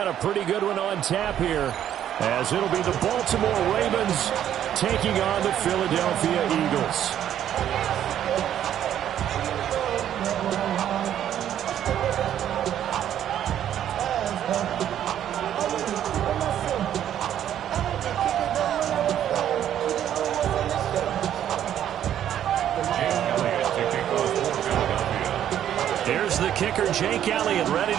a pretty good one on tap here, as it'll be the Baltimore Ravens taking on the Philadelphia Eagles. Here's the kicker, Jake Elliott, ready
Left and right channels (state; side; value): quieter; left; 10.6 dB